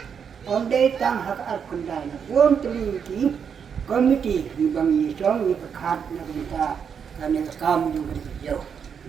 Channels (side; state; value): left; quieter; 7.1 dB